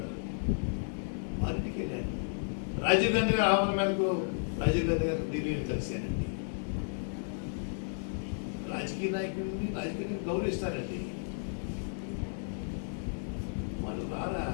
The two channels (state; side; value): silent; right; 56 dB below the other